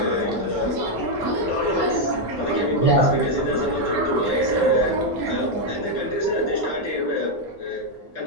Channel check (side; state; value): both; normal; correlation 0.01